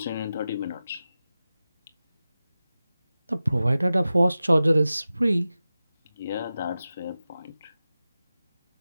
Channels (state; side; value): inverted; both; correlation -0.94